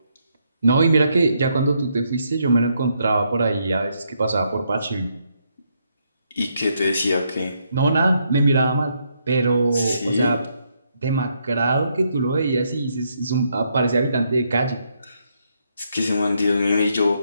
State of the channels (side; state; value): both; inverted; correlation -0.76